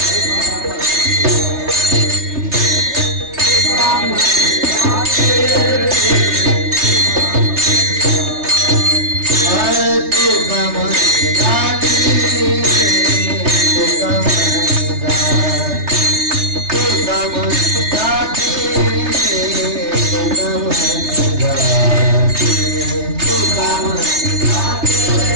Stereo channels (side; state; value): left; late; 3.3 ms